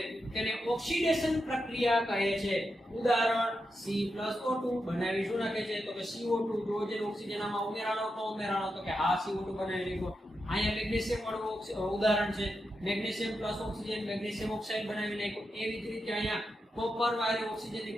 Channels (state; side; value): normal; both; correlation 0.87